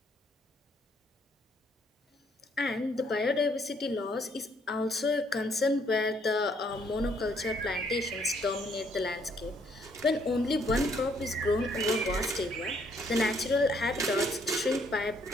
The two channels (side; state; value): both; normal; correlation 0.68